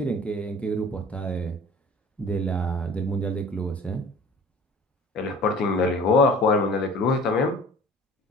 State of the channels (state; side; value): normal; both; correlation 0.45